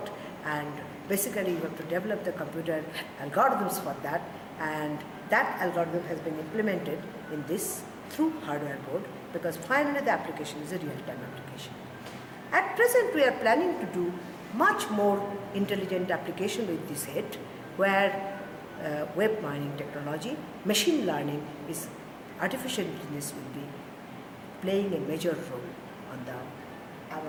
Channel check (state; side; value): identical; both; correlation 1.00